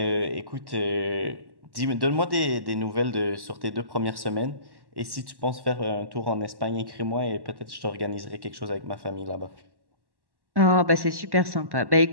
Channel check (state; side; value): late; left; 1.1 ms